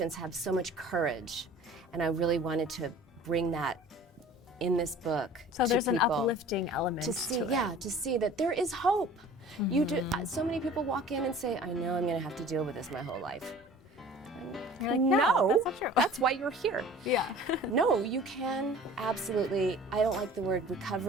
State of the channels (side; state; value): both; normal; correlation 0.45